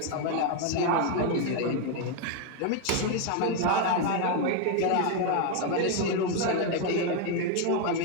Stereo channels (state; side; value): different; both; correlation 0.01